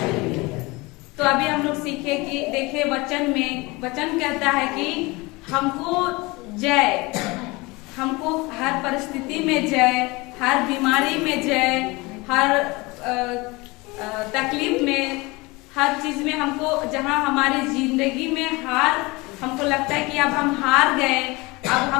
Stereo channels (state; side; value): quieter; right; 24.0 dB